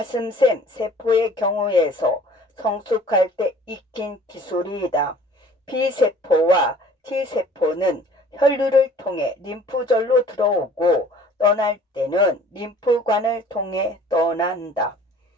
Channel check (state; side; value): normal; both; correlation 0.51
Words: 세포의 경우에서 성숙할 때 익힌 기술이다. B세포와 T세포는 혈류를 통해 림프절로 들어오고 떠날 때는 림프관을 통해 떠난다.